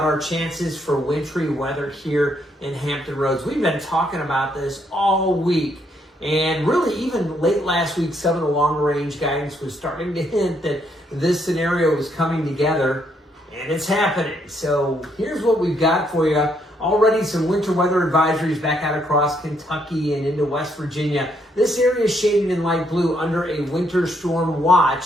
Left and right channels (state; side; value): normal; both; correlation 0.73